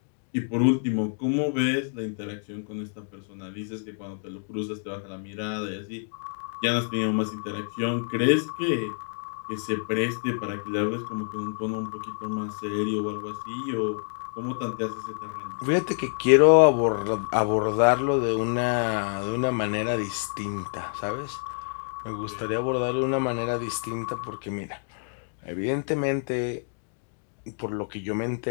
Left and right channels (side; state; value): right; silent; 58 dB below the other